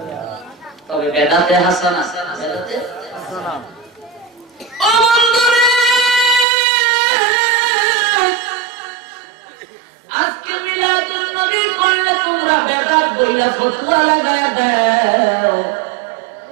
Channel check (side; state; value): left; drops out; at 6.5 s